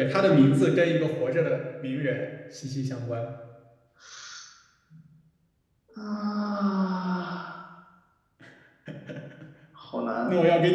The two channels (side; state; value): both; identical; correlation 1.00